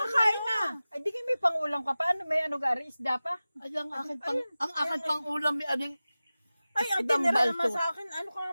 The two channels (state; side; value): inverted; both; correlation -0.96